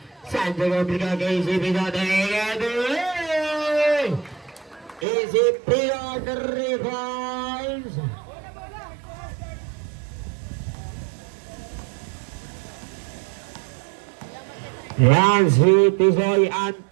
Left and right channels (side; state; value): left; drops out; at 5.1 s